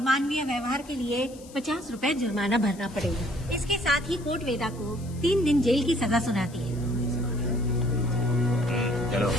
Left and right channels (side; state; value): left; noise; hiss, 22 dB below the sound